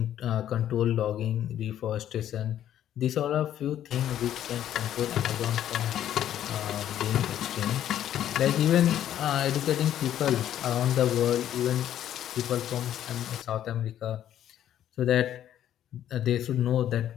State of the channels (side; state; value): right; quieter; 11.1 dB